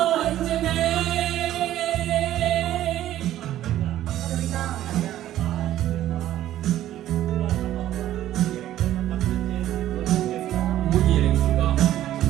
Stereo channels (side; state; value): left; quieter; 13.1 dB